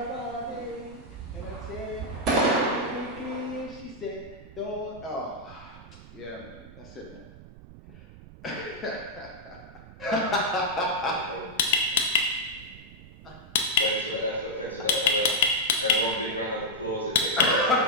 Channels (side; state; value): right; noise; rumble, 18 dB below the sound